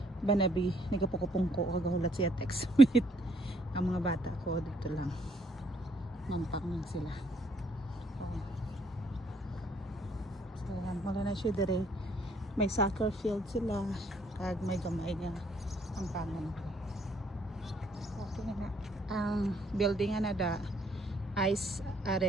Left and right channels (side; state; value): both; normal; correlation 0.67